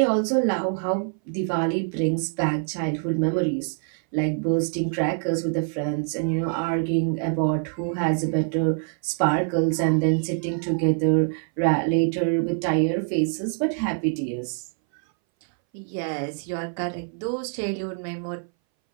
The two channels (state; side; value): silent; left; 60 dB below the other